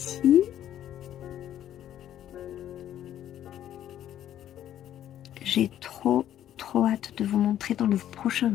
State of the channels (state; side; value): quieter; right; 11.4 dB